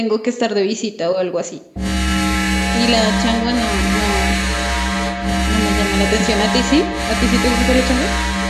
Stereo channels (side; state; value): both; identical; correlation 1.00